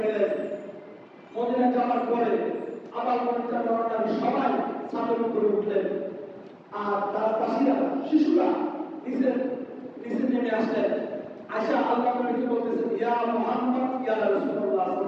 গেলেন, মদিনায় যাওয়ার পরে আবার মদিনা যাওয়ার আগে সবাই ছাদের উপরে উঠলেন, আর তার পাশিরা শিশুরা নিচে নেমে আসলেন। আশা আল্লাহ নবীকে বলতেছেন, ইয়া মুহাম্মদ ইয়া রাসূলুল্লাহ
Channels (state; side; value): identical; both; correlation 1.00